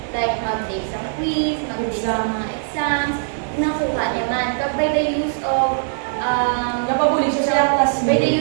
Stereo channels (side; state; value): left; silent; digital silence